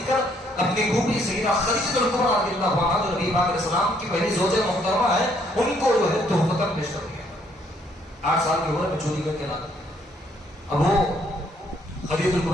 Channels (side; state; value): both; normal; correlation 0.68